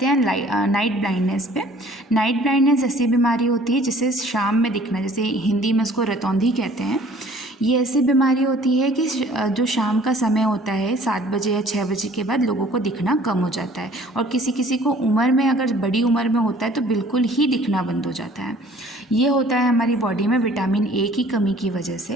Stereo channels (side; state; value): both; normal; correlation 0.54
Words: हैं नाइट ब्लाइंडनेस पे। नाइट ब्लाइंडनेस ऐसी बीमारी होती है जिसे शाम में दिखना, जैसे हिंदी में उसको रतौंधी कहते हैं। ये ऐसी बीमारी होती है कि जो शाम का समय होता है 7 बजे या 6 बजे के बाद लोगों को दिखना कम हो जाता है, और किसी किसी को उम्र में, अगर बड़ी उम्र में होता है तो बिल्कुल ही दिखना बंद हो जाता है। ये होता है हमारी बॉडी में विटामिन ए की कमी की वजह